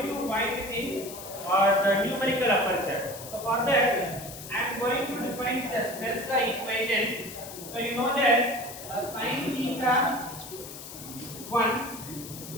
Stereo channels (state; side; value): noise; left; hiss, 12 dB below the sound